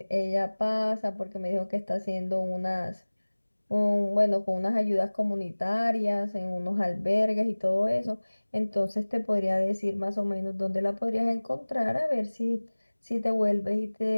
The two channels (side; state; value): both; inverted; correlation -1.00